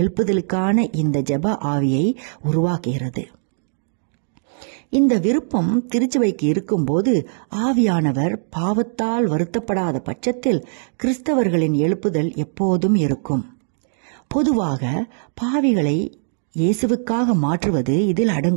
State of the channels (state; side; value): silent; left; digital silence